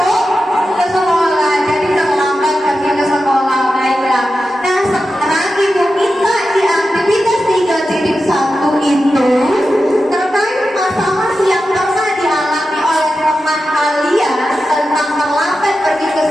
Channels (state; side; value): normal; both; correlation 0.91